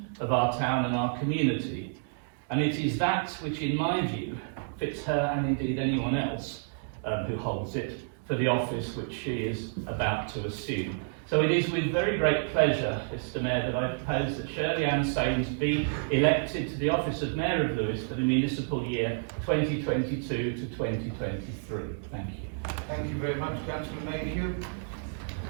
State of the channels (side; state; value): left; silent; digital silence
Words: of our town and our community. And it is that which, in my view, fits her and indeed anyone else who holds it for the office which she is about to assume. So it is with very great pleasure, Mr Mayor, that I propose that Shirley Ann Sains be elected to the office of Mayor of Lewes for the municipal year 2022 to 2023. Thank you. Thank you very much, Councillor Mayhew.